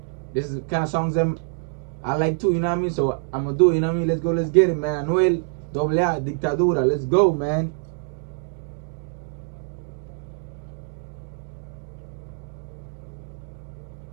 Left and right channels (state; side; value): silent; left; digital silence